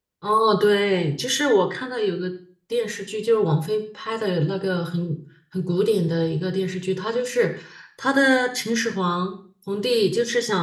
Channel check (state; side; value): identical; both; correlation 1.00